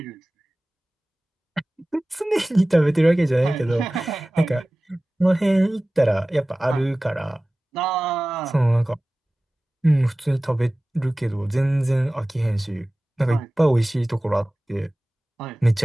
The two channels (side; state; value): both; normal; correlation 0.97